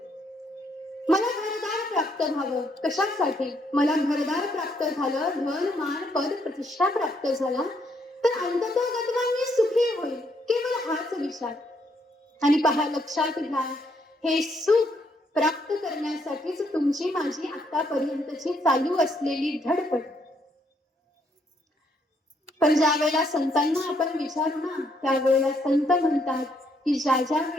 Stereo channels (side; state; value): both; normal; correlation 0.72